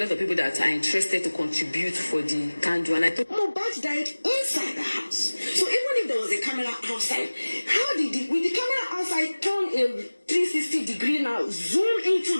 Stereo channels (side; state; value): both; inverted; correlation -1.00